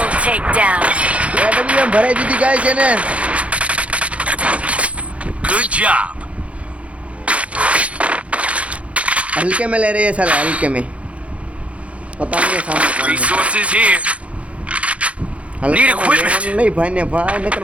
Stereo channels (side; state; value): left; late; 0.063 ms